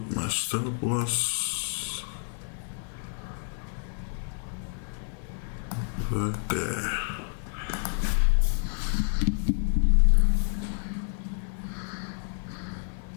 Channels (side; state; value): right; silent; 59 dB below the other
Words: my stop loss right there.